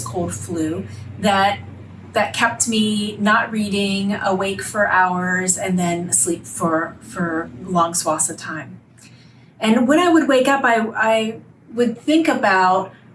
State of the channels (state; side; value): identical; both; correlation 1.00